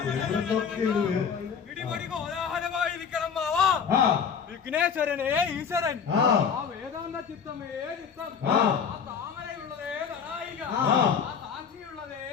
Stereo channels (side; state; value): right; quieter; 6.8 dB